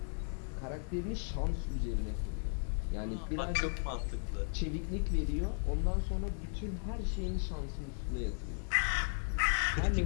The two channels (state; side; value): silent; right; 54 dB below the other